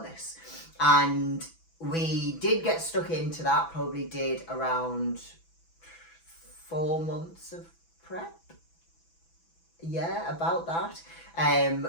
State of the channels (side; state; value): right; late; 6.0 ms